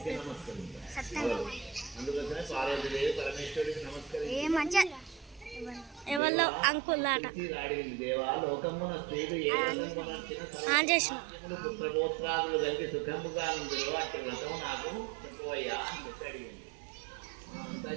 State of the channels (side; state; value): left; drops out; at 6.2 s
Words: ఏ మంచిగా ఎవరిలో అంకుల్ ఆట చేసిన